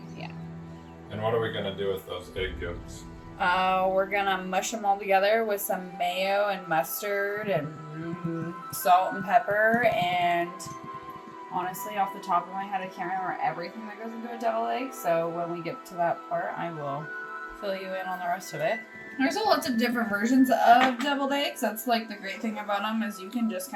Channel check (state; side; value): identical; both; correlation 1.00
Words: yeah. And what are we going to do with those egg yolks? We're going to mush them all together with some mayo and mustard and salt and pepper, and honestly, off the top of my head, I can't remember everything that goes into a deviled egg, so when we get to that part, I will fill you in on the rest of it. There's lots of different versions of deviled eggs. That's like the great thing about them, is you can just